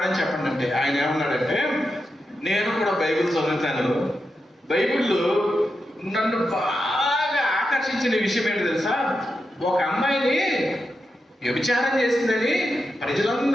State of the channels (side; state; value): both; normal; correlation 0.88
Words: చెప్పండి అంటే ఆయన ఏమన్నాడంటే, నేను కూడా బైబిల్ చదువుతాను, బైబిల్లో నన్ను బాగా ఆకర్షించిన విషయం ఏంటి తెలుసా? ఒక అమ్మాయిని వ్యభిచారం చేసిందని